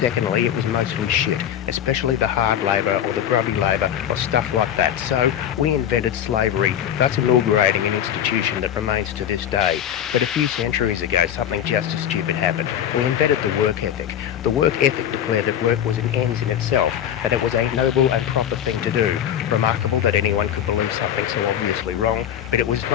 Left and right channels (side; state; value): right; quieter; 9.9 dB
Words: it was mostly shit, especially the hard labour or the grubby labour or stuff like that. So we invented slavery, thus inaugurating an institution that remains to this day. But a few centuries ago, something just as stupid happened. We invented the work ethic. The work ethic declared that work was an end in itself, that it was a noble and proper thing to do. Remarkable that anyone could believe something so obviously wrong, but it was